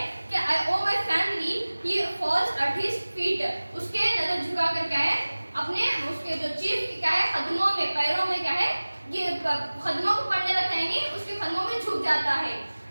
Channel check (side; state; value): both; inverted; correlation -1.00